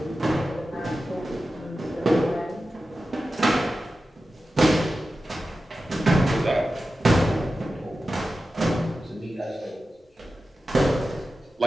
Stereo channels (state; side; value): normal; both; correlation 0.93